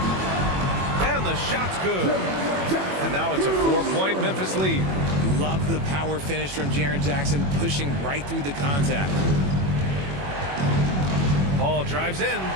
And the shot's good. And now it's a 4-point Memphis lead. Love the power finish from Jaren Jackson, pushing right through the contact. Paul drives in.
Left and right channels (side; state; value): left; late; 21 ms